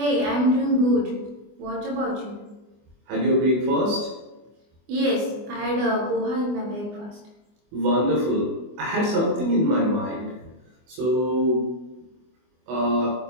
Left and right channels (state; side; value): late; left; 24 ms